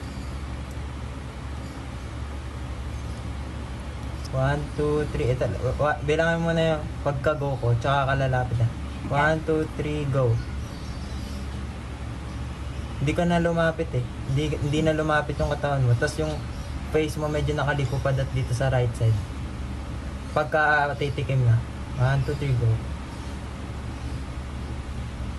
One, two, three. Ito, bilangin mo na yung pagka-go ko, tsaka kalalapit na. 1, 2, 3, go. Hindi ka na lumapit eh. Hindi na lumapit yung katawan mo. Tapos yung face mo medyo nakaliko pa dito sa right side. Pagka titikim na. 1, 2, 3, go.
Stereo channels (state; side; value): identical; both; correlation 1.00